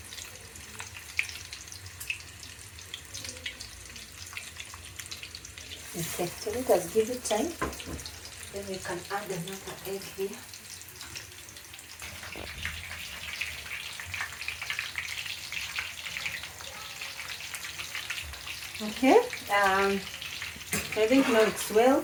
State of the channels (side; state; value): both; identical; correlation 1.00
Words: Okay, so let us give it time. Then we can add another egg here. Okay, I think now it's well